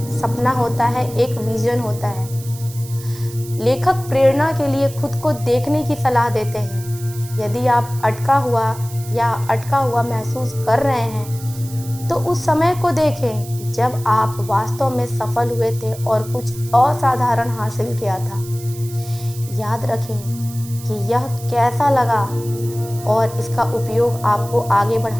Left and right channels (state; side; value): noise; right; hiss, 16 dB below the sound